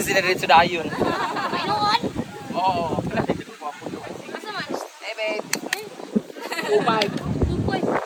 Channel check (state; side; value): identical; both; correlation 1.00